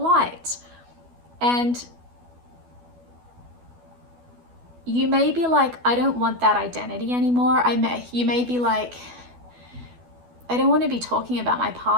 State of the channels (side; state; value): left; late; 12 ms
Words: And you may be like, I don't want that identity anymore. You may be like, I don't want to be talking about my